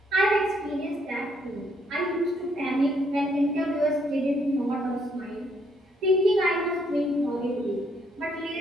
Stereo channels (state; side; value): normal; both; correlation 0.70